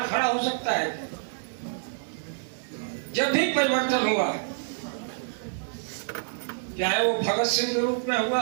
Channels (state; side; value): silent; left; 60 dB below the other